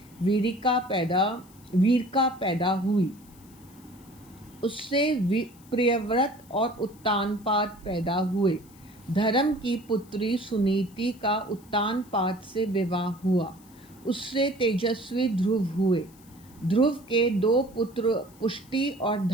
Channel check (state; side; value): noise; left; hiss, 26 dB below the sound